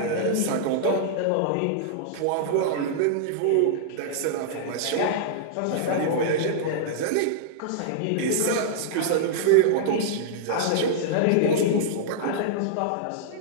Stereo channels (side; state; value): both; different; correlation -0.02